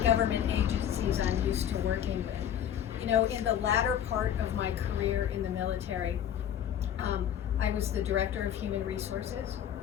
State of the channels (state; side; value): quieter; right; 9.7 dB